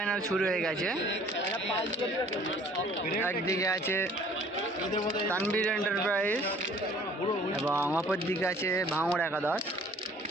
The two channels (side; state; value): both; normal; correlation 0.54